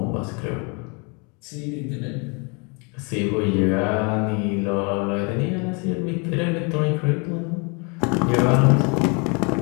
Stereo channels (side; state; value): right; quieter; 32.6 dB